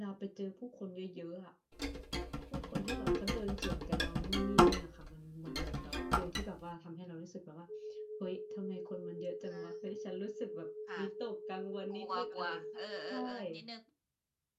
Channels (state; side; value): identical; both; correlation 1.00